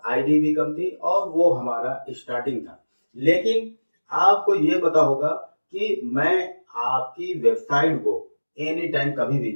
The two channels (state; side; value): inverted; both; correlation -1.00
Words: आईडी भी कम थी और वो हमारा स्टार्टिंग था। लेकिन आपको ये पता होगा कि मैं आपकी वेबसाइट को एनी टाइम कभी भी